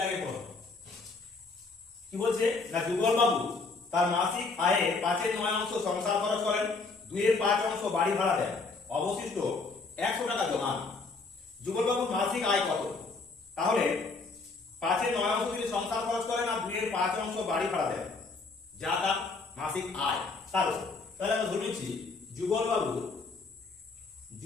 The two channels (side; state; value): right; quieter; 4.0 dB